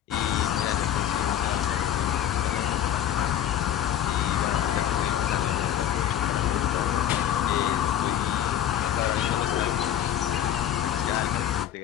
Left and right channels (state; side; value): quieter; right; 11.0 dB